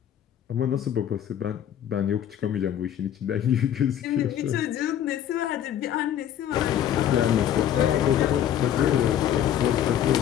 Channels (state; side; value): quieter; right; 10.5 dB